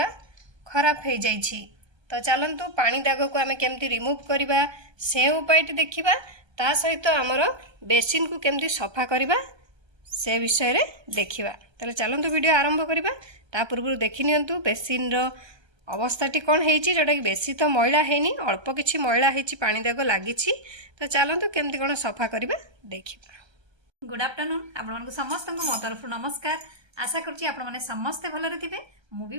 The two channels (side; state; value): left; late; 1.3 ms